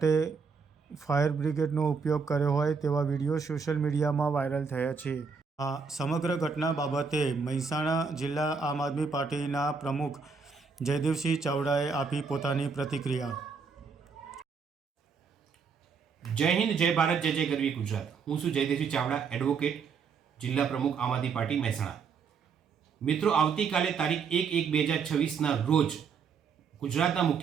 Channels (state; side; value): quieter; left; 5.5 dB